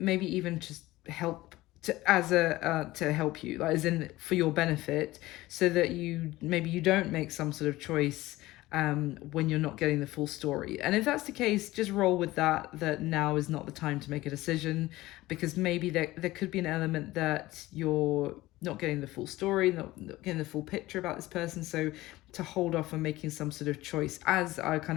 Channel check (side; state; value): right; quieter; 18.0 dB